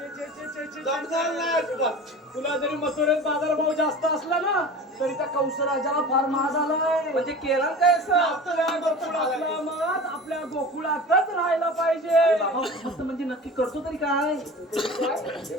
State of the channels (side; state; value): both; normal; correlation 0.36